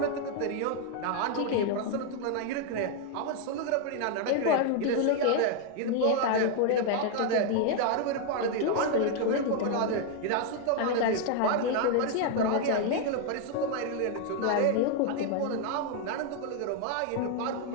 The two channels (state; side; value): different; both; correlation 0.00